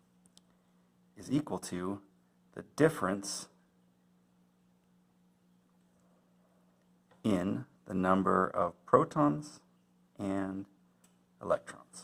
is equal to the difference in the number of protons and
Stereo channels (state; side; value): identical; both; correlation 1.00